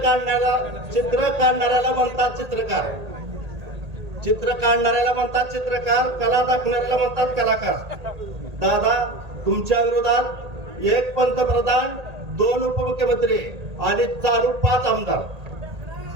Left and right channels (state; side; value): late; left; 1.8 ms